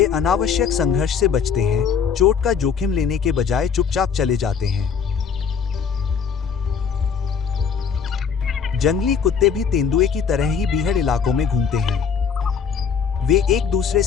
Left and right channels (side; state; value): right; quieter; 6.6 dB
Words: अनावश्यक संघर्ष से बचते हैं, चोट का जोखिम लेने के बजाय चुपचाप चले जाते हैं। जंगली कुत्ते भी तेंदुए की तरह ही बीहड़ इलाकों में घूमते हैं। वे एक दूसरे